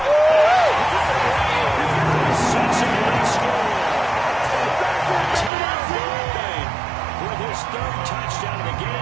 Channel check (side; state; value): left; drops out; at 5.5 s